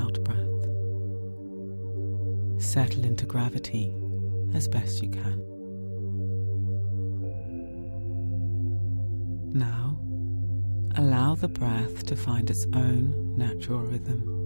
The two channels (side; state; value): both; inverted; correlation -1.00